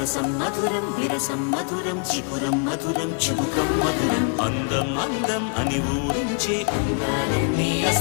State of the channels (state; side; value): quieter; right; 38.0 dB